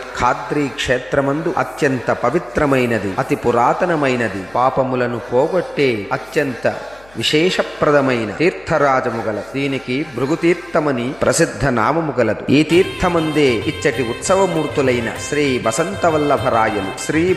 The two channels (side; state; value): left; noise; hum, 27 dB below the sound